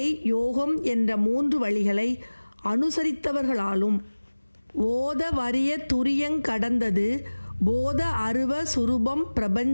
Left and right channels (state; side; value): inverted; both; correlation -1.00